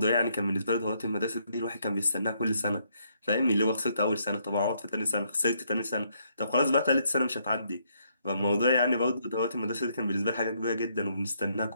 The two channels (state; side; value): inverted; both; correlation -0.73